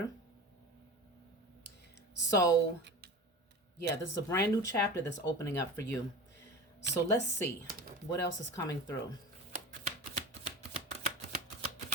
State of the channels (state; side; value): normal; both; correlation 0.33